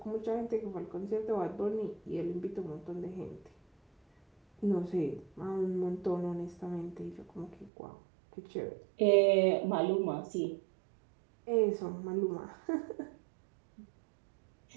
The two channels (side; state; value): left; drops out; at 7.7 s